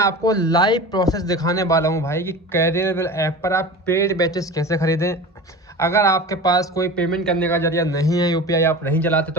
लाइव प्रोसेस दिखाने वाला हूं भाई कि कैरियरबल ऐप पर आप पेड बैचेस कैसे खरीदें। अगर आपके पास कोई पेमेंट करने का जरिया नहीं है, यूपीआई आप नहीं चलाते,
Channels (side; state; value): both; normal; correlation 0.34